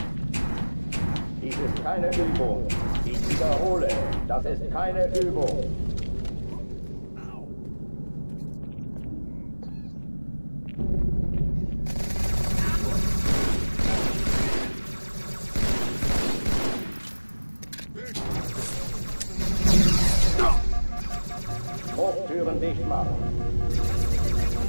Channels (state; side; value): inverted; both; correlation -1.00